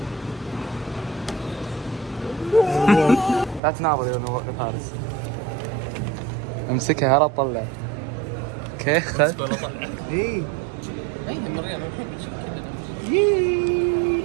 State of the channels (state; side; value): drops out; left; at 3.6 s